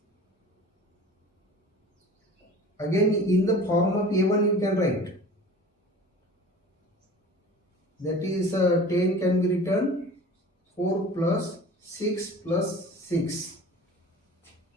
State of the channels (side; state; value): both; normal; correlation 0.41